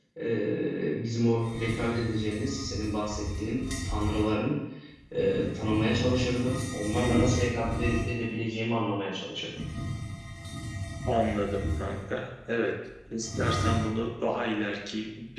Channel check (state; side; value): identical; both; correlation 1.00